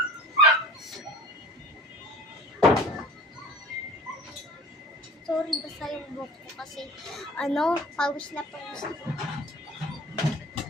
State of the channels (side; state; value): both; normal; correlation 0.43